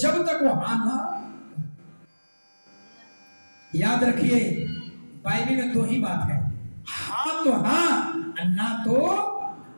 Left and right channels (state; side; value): inverted; both; correlation -1.00